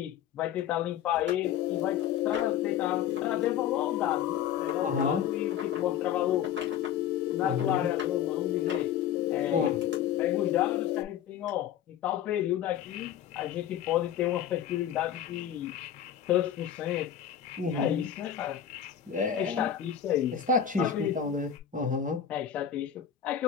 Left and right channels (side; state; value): right; quieter; 9.7 dB